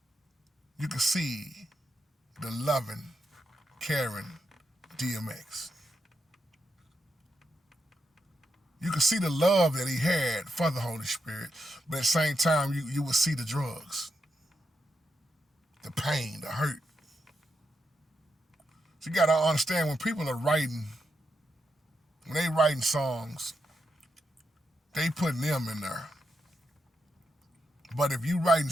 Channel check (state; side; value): normal; both; correlation 0.84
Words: you could see the loving, caring DMX. You could see the love that he had for the Holy Spirit, but at the same time, you would see the drugs, the pain, the hurt. So you gotta understand when people are writing, when they writing songs, they putting them in there. But if you writing